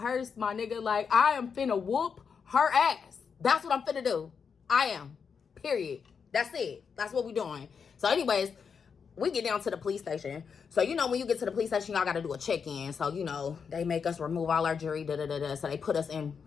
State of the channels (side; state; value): right; quieter; 6.2 dB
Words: my nigga. Like, I am finna whoop her ass. That's what I'm finna do. I am. Period. That's it. That's what we doing. So anyways, we get down to the police station. So, you know, when you get to the police station, y'all got to do a check-in. So, you know, they make us remove all our jewelry, So they put us in